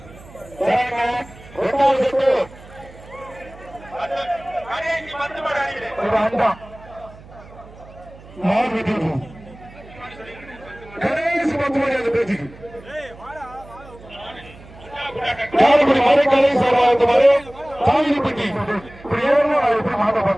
அண்டா மாடு வெட்டிவிட்டு கடைசி 10 மணி அந்த பேச்சுக்கு காரைக்குடி மறைக்கலை சார்பாக மறை தாங்கிப்பட்டி இப்படி ஏறணும் நான் எப்படி மாட்ட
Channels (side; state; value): right; noise; hum, 20 dB below the sound